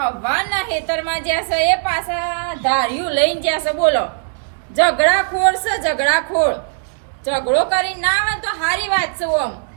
હવાના ખેતરમાં જ્યાં છે એ પાછા ધાર્યું લઈને જ્યાં છે બોલો ઝઘડાખોર છે. ઝઘડાખોર ઝઘડો કરી ના આવે તો સારી વાત છે. ઓમ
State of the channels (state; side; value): silent; left; digital silence